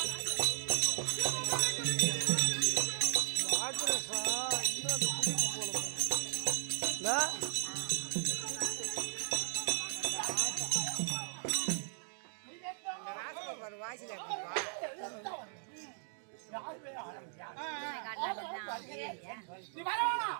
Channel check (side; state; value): left; silent; digital silence